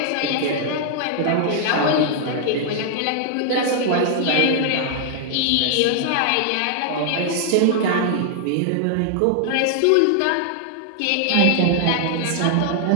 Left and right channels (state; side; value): different; both; correlation 0.00